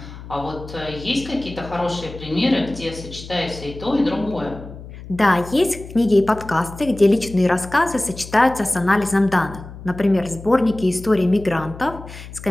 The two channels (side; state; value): left; noise; hum, 14 dB below the sound